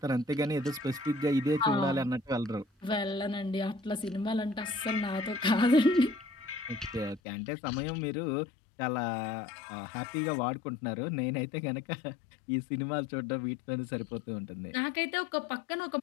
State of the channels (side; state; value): right; drops out; at 7.2 s